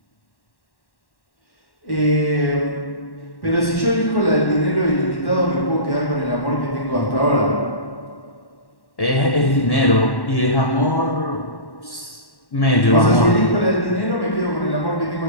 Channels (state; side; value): late; right; 1.1 ms